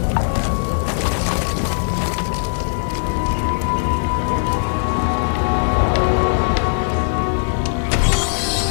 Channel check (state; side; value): silent; right; digital silence